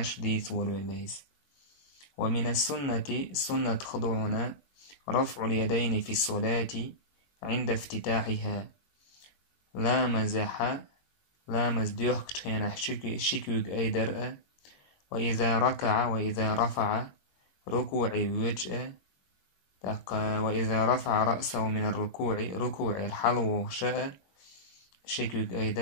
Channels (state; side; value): late; right; 21 ms